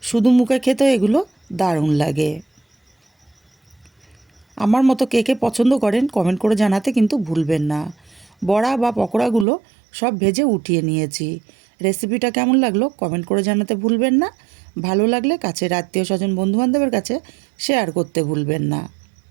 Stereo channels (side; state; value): left; drops out; at 9.5 s